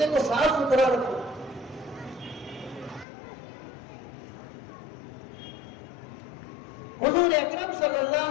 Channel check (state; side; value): drops out; right; at 3.1 s